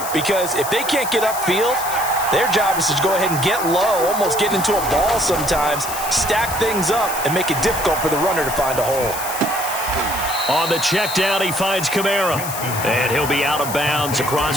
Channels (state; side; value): noise; left; hiss, 8 dB below the sound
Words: because if they can't get upfield, their job is to go ahead and get low, almost get into a ball sometimes, stack things up, and make it difficult for the runner to find a hole. On the check down, he finds Kamara, and he'll be out of bounds